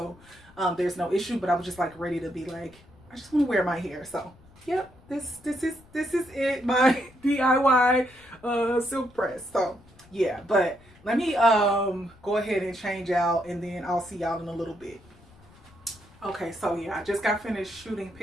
there's no issue. But I was just like ready to be like, I just want to wear my hair. So yep, this is it, my DIY silk press. So yeah, but let me go ahead and change out, and then I'll see y'all in a little bit. Okay, so yeah, I just got finished shooting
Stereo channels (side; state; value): left; noise; rumble, 26 dB below the sound